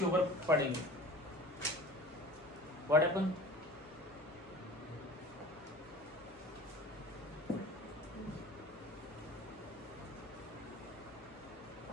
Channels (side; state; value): both; normal; correlation 0.40